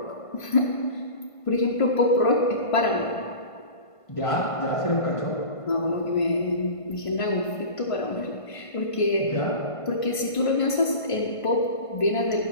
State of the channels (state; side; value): late; right; 1.5 ms